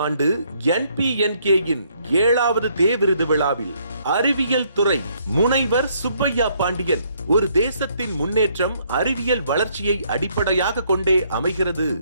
ஆண்டு NPNK-யின் 7வது தே விருது விழாவில் அறிவியல் துறை முனைவர் சுப்பையா பாண்டியன், ஒரு தேசத்தின் முன்னேற்றம் அறிவியல் வளர்ச்சியை அடிப்படையாக கொண்டே அமைகிறது.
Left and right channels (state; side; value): inverted; both; correlation -0.68